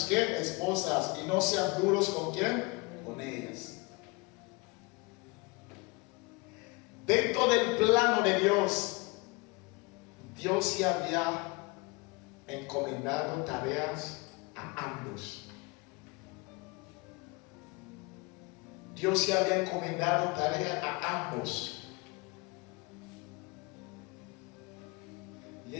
¿qué? Esposas y no sean duros con quién, con ellas. Dentro del plano de Dios, Dios ya había encomendado tareas a ambos. Dios ya había encomendado tareas a ambos. Y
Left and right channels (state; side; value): quieter; right; 27.0 dB